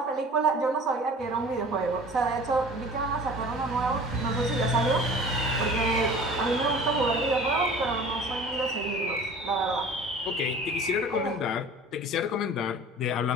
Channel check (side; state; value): both; normal; correlation 0.43